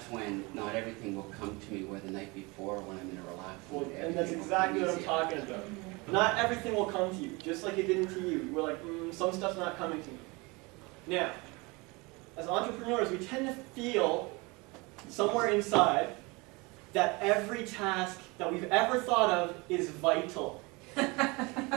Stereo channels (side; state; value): left; quieter; 26.0 dB